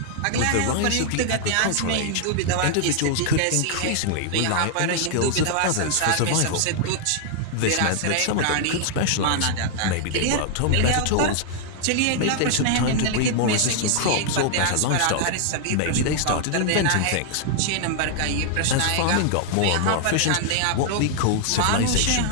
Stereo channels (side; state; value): both; different; correlation 0.00